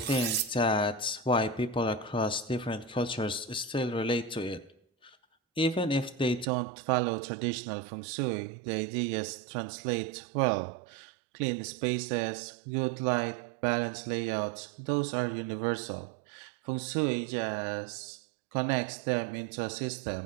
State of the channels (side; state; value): left; drops out; at 6.5 s